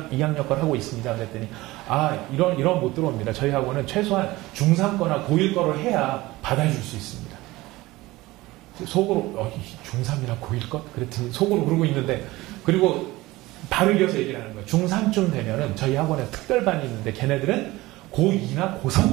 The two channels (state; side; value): quieter; left; 19.3 dB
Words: 거를 하고 있습니다. 그랬더니 이런 못 들어옵니다. 저희 학원은 최소한 중3 거나 고1 거를 해야 받아줄 수 있습니다. 속으로 중3이나 고1 것? 그랬더니 속으로 그러고 있는데 그리고 바로 이어서 얘기를 하는 거예요. 중3쯤 되면은 저희 학원에 특별반이 있는데 걔네들은 고2나